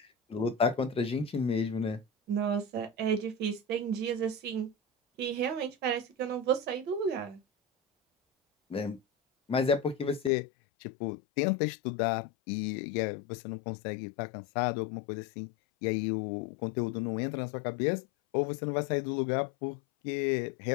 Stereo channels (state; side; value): drops out; right; at 10.3 s